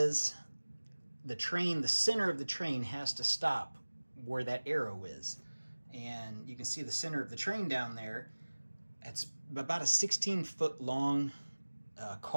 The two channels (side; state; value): both; inverted; correlation -1.00